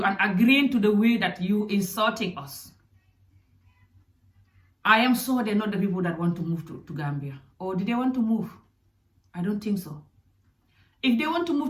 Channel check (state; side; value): identical; both; correlation 1.00